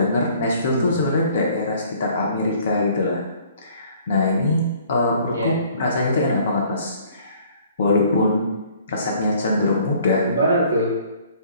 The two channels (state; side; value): inverted; both; correlation -0.57